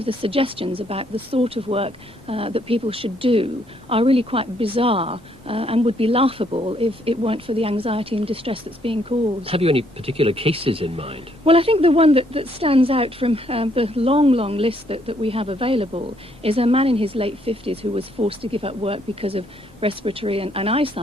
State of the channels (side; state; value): both; normal; correlation 0.70